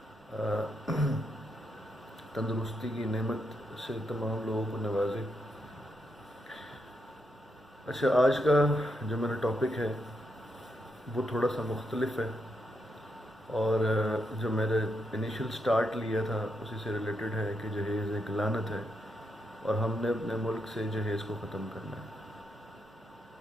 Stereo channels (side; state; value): both; normal; correlation 0.81